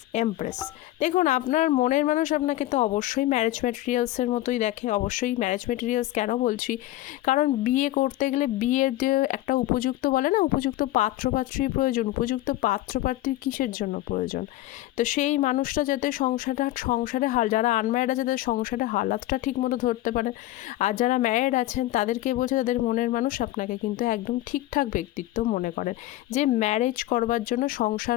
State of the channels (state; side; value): quieter; right; 15.9 dB